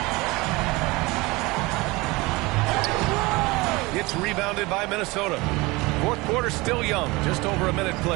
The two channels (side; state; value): left; quieter; 23.0 dB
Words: It's rebounded by Minnesota. Fourth quarter still young, just over a minute